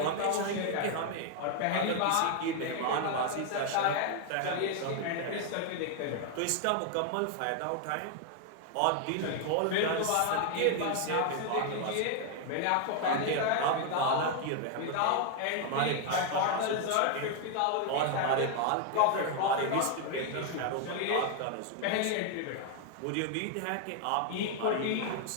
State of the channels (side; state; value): both; different; correlation 0.00